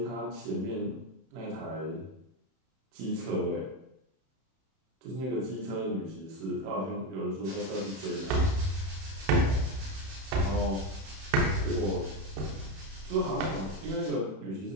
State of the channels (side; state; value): left; late; 31 ms